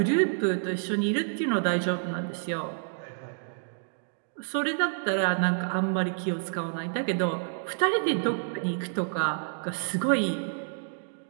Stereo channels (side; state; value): left; silent; digital silence